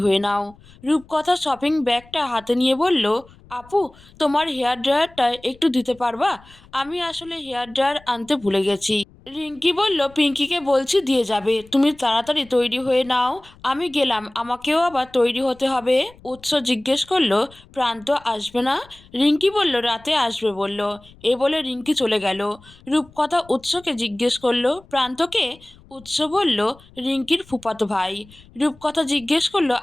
নাও। রূপকথা শপিং ব্যাগটা হাতে নিয়ে বলল, আপু, তোমার হেয়ার ড্রায়ারটা একটু দিতে পারবা? আমি আসলে হেয়ার ড্রায়ার আনতে ভুলে গেছি। রিঙ্কি বলল, পিঙ্কিকে বলছি দিয়ে যাবে, তুমি তাড়াতাড়ি তৈরি হয়ে নাও। আমি গেলাম, আমাকেও আবার তৈরি হতে হবে। উৎস জিজ্ঞেস করলো, প্রান্ত আসবে না? রিঙ্কি বলল, রাতে আসবে বলল। এ বলে রিঙ্কি চলে গেল। রূপকথা উৎসকে জিজ্ঞেস করলো, প্রান্তকে? উৎস বলল, রিঙ্কির ফুফাতো ভাই। রূপকথা জিজ্ঞেস করলো,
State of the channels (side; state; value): left; noise; rumble, 25 dB below the sound